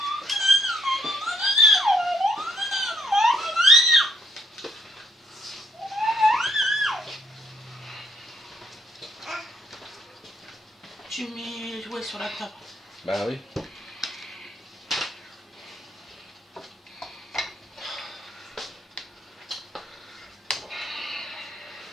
Tu mets les jouets sur la table. bah oui.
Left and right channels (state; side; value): normal; both; correlation 0.71